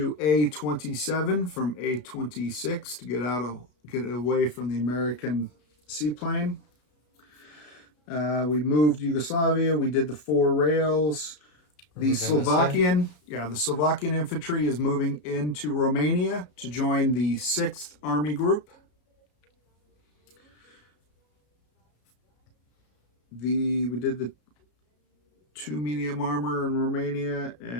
A27 from A26 to get away from the American seaplane. We moved Yugoslavia. We did the 4 rails. The Slovakian infantry is moving into Romania to join the 6th Army Group. We did the 2 medium armor in Romania,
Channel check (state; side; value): late; right; 33 ms